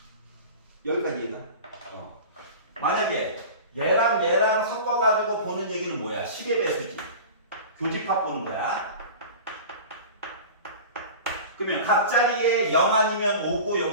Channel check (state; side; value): inverted; both; correlation -0.35